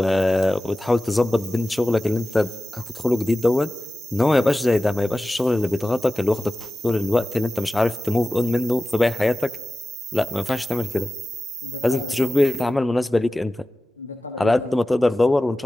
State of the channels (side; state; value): both; normal; correlation 0.95